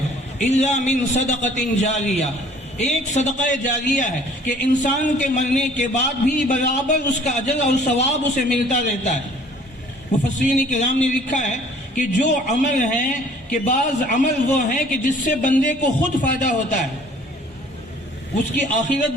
الا من صدقۃ جاریہ، ایک صدقہ جاریہ ہے کہ انسان کے مرنے کے بعد بھی برابر اس کا اجر اور ثواب اسے ملتا رہتا ہے. مفسرین کرام نے لکھا ہے کہ جو عمل ہیں کہ بعض عمل وہ ہیں کہ جس سے بندے کو خود فائدہ ہوتا ہے، اس کی آخرت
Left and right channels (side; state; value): both; normal; correlation 0.54